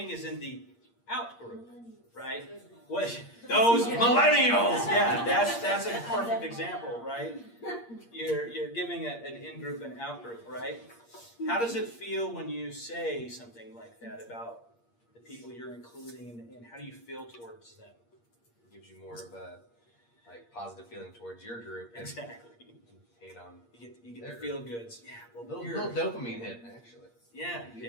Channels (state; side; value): late; right; 8.6 ms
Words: is in the out group, right? What those millennials? Yeah, that's a perfect example, right? You're giving an in group and out group, right? How does it feel when you say something like that about the people you're including, and how do you feel towards them? gives you more of a like positive feeling towards your group. And Exactly. hate on. You get the feel goods. Yeah. Well, Little dopamine hit actually. Yeah.